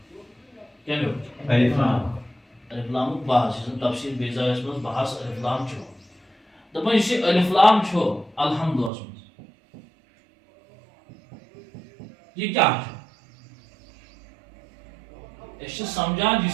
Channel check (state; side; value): drops out; left; at 8.9 s